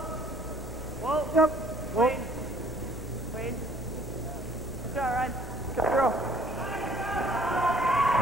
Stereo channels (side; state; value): both; normal; correlation 0.58